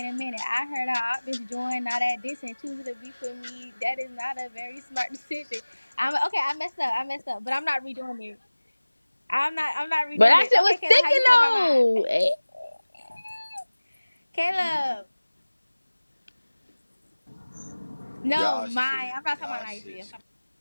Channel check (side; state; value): both; inverted; correlation -1.00